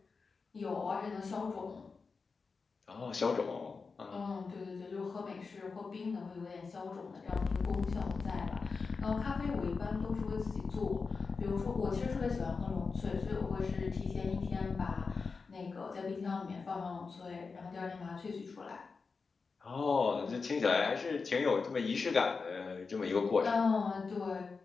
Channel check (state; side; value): quieter; right; 4.7 dB